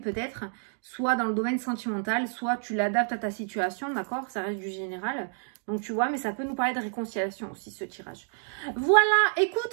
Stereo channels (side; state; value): left; silent; 59 dB below the other